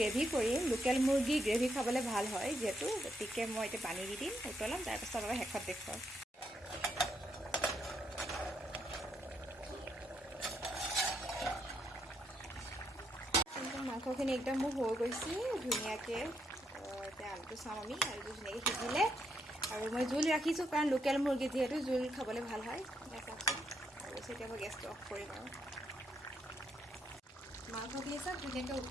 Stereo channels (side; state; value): both; normal; correlation 0.77